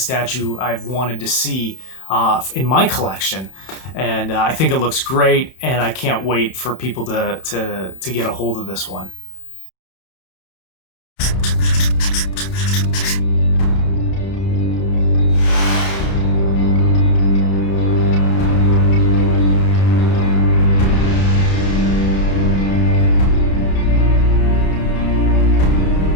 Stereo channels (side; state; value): right; late; 31 ms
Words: I've wanted to see in my collection. And I think it looks great, and I can't wait for people to get a hold of this one.